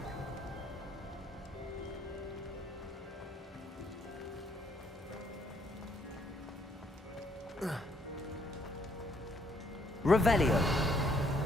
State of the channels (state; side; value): normal; both; correlation 0.69